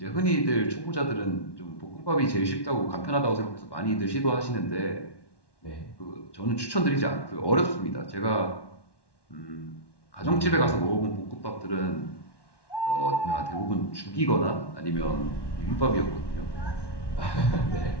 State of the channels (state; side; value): late; right; 1.1 ms